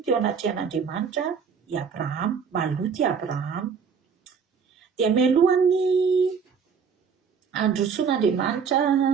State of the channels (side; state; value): left; quieter; 6.2 dB